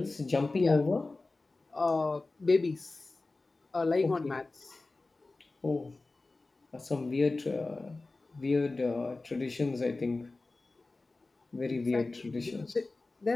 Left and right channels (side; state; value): right; quieter; 3.3 dB